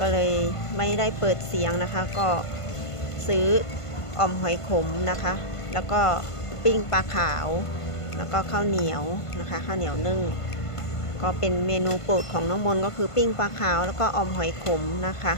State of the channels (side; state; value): right; late; 1.5 ms